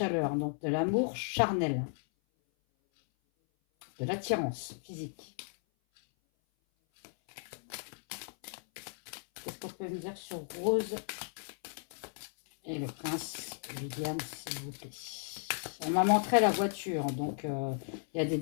Donc de l'amour charnel. De l'attirance physique. Qu'est-ce qu'on peut me dire sur Rose et le prince William, s'il vous plaît? On m'a montré la voiture, donc il y a des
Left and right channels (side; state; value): right; silent; 55 dB below the other